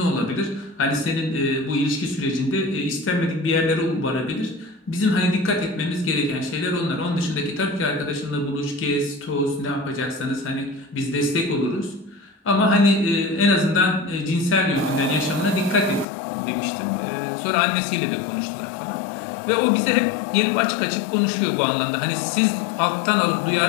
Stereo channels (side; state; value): right; drops out; at 16.1 s